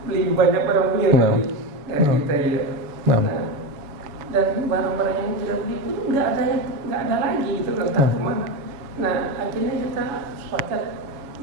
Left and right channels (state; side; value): late; left; 7.0 ms